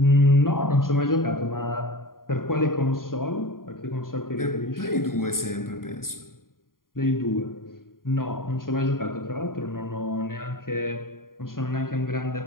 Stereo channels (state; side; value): late; right; 0.91 ms